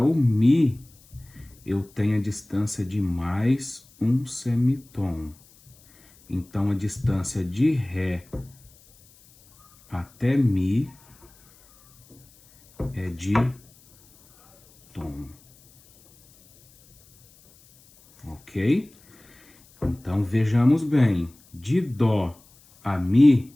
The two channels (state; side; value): noise; left; hiss, 28 dB below the sound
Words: o Mi, eu tenho a distância de mais um semitom. Então, a distância de Ré até Mi é de tom. Ok? Então, vejamos bem. De Dó a Mi,